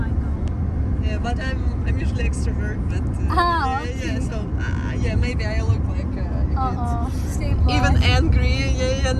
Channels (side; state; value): both; identical; correlation 1.00